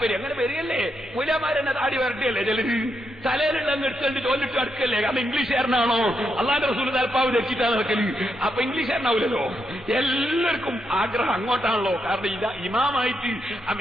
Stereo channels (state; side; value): normal; both; correlation 0.82